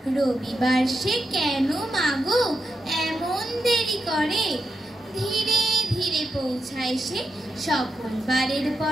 রবিবার সে কেন মাগো এমন দেরি করে, ধীরে ধীরে পৌঁছায় সে সকল বারের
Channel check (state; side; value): normal; both; correlation 0.86